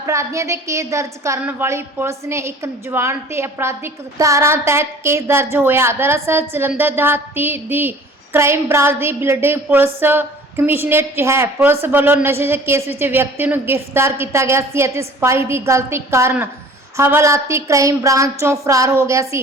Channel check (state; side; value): normal; both; correlation 0.47